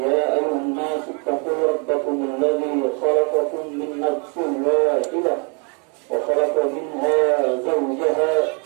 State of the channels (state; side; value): quieter; left; 36.5 dB